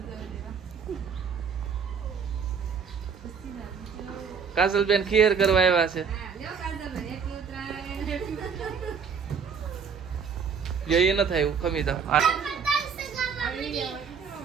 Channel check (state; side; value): quieter; left; 6.3 dB